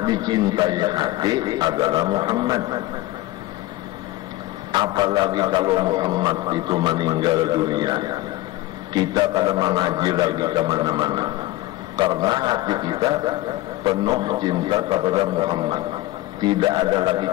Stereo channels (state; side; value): quieter; right; 17.2 dB